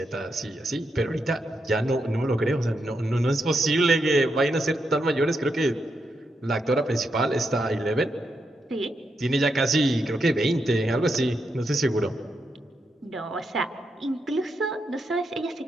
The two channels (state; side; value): normal; both; correlation 0.83